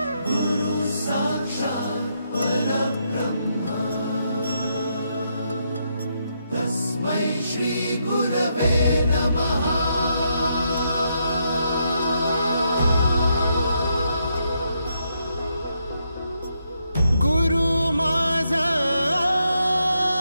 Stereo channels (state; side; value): inverted; both; correlation -0.79